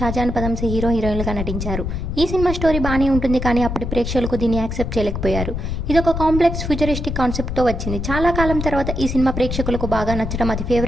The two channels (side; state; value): left; noise; rumble, 4 dB below the sound